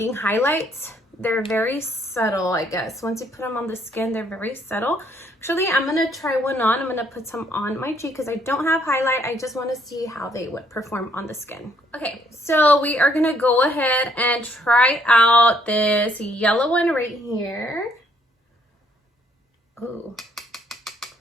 highlights. They're very subtle, I guess. Once you put them on the skin, they're very subtle. Actually, I'm gonna try one on. I'm gonna put some on my cheek because I don't have highlight. I just want to see how they would perform on the skin. Okay, so we are gonna go ahead and try out this yellow one right here. Ooh,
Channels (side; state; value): both; normal; correlation 0.67